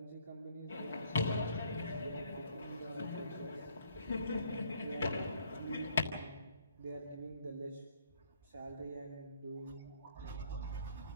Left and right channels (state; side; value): inverted; both; correlation -0.65